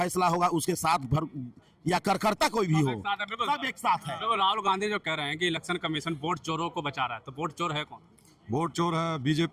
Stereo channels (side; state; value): both; identical; correlation 1.00